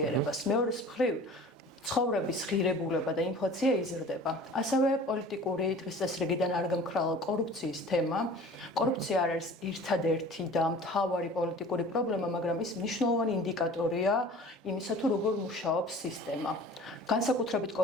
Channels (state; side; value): normal; both; correlation 0.44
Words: მეორეს მხრივ ცხოვრების ღირებულება და ინფლაცია იზრდება. ასევე პოლიტიკური დღის წესრიგიდან არ გამქრალა კორუფციის თემა. კორუფცია არ არის ერთადერთი და მთავარი პოლიტიკური პრობლემა, მაგრამ ის მნიშვნელოვანი ინდიკატორია იმისა, თუ როგორ მუშაობს სისტემა. განსაკუთრებით